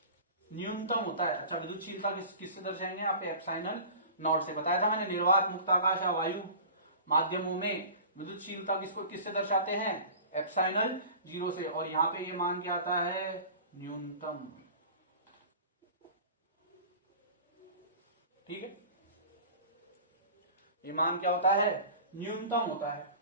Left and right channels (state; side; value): inverted; both; correlation -0.39